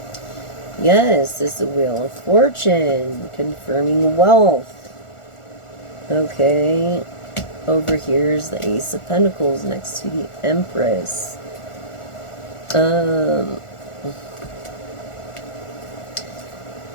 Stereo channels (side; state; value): right; late; 1.4 ms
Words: Yes, this is the Wheel of Fortune, confirming wealth. Okay, over here is the Ace of Pentacles next to the Empress.